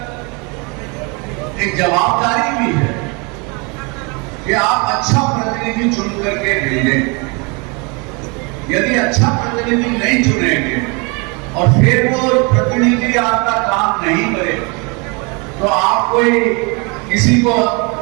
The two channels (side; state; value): left; quieter; 30.6 dB